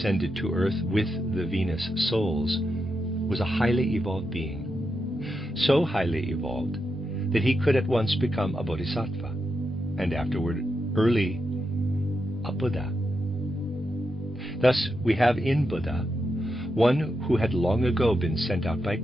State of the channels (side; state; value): both; normal; correlation 0.85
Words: to Earth with the Venus souls, was a highly evolved being. So highly evolved that he could at once become a bodhisattva, and afterward early a Buddha. Thus we have in Buddha one who had long ago been sent out by